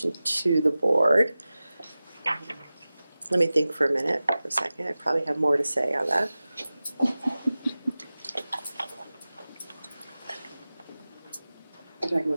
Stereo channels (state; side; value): inverted; both; correlation -0.96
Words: to the board. Let me think for a second. I probably have more to say on that. You're talking